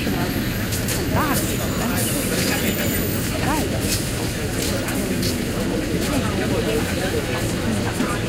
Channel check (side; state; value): both; identical; correlation 1.00